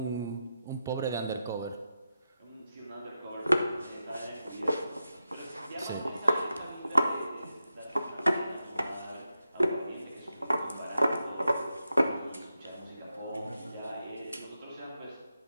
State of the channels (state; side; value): inverted; both; correlation -0.89